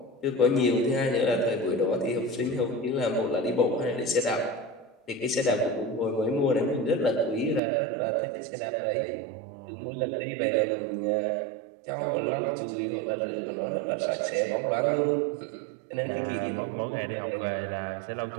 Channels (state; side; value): drops out; left; at 7.6 s